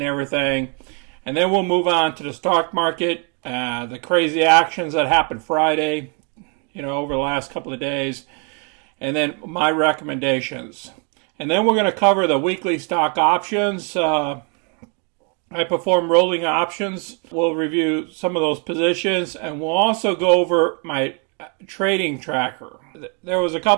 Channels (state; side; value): quieter; left; 37.0 dB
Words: everything, and then we'll move on to the stock market, the crazy actions that happened Friday, over the last couple of days, and then my recommendations. And then we're going to cover the weekly stock options. I perform rolling options. We'll review some of those positions, and we'll also go over my trading tracker. There was a